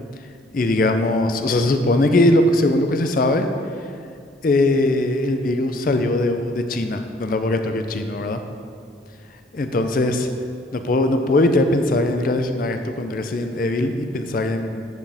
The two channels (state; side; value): normal; both; correlation 0.59